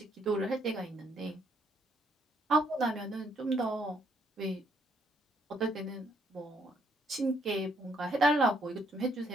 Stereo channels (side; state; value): both; normal; correlation 0.70